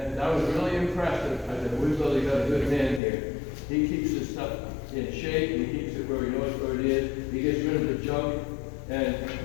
I was really impressed. I said, we've really got a good man here. He keeps his stuff in shape, he keeps it where he knows where it is, he gets rid of the junk, and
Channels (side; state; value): right; drops out; at 3.0 s